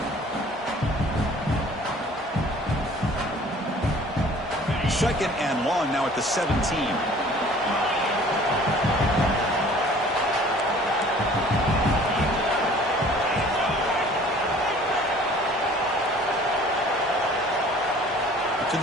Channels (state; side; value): normal; both; correlation 0.50